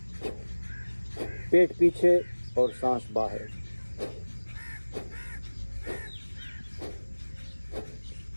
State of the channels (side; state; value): both; inverted; correlation -1.00